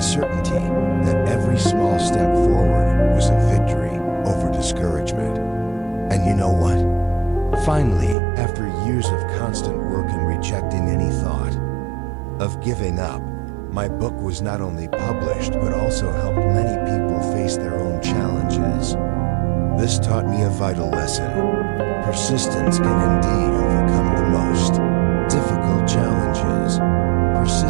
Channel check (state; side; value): drops out; left; at 8.2 s